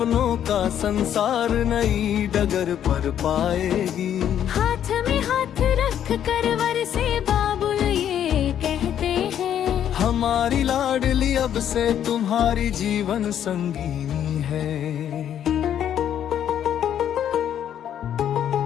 का संसार नई डगर पर पाएगी। हाथ में हाथ रख कर वर से बाबुल ये कहते हैं, हमारी लाडली अब से तुम्हारी जीवन संगीनी है।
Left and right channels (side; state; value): right; quieter; 9.9 dB